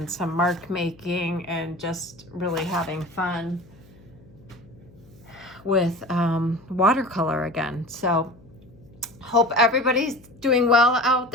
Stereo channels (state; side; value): noise; left; hum, 25 dB below the sound